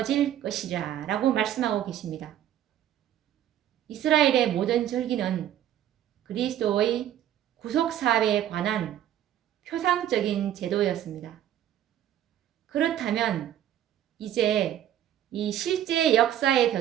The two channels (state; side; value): quieter; left; 11.3 dB